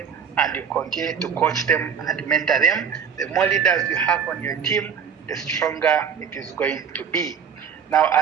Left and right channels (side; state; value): left; quieter; 7.3 dB